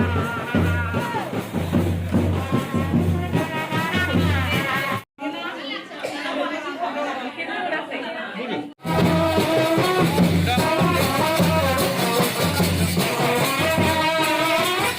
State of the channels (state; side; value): identical; both; correlation 1.00